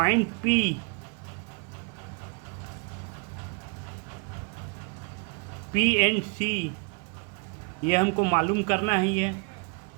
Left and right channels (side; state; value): left; quieter; 34.2 dB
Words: P and C, ये हमको मालूम करना ही है।